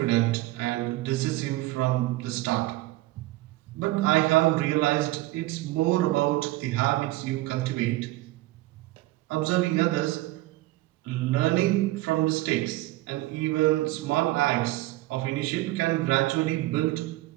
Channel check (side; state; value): left; quieter; 18.0 dB